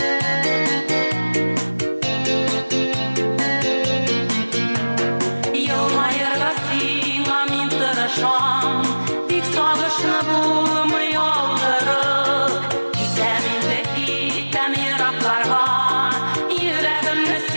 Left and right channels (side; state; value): both; inverted; correlation -1.00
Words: Dik sağışını bulmuyor yıldırık Gizeminde gittem yıraklarga Yüreğimde